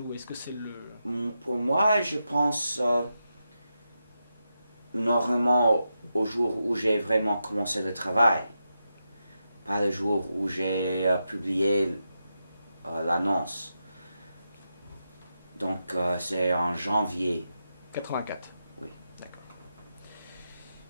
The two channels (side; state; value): both; inverted; correlation -0.87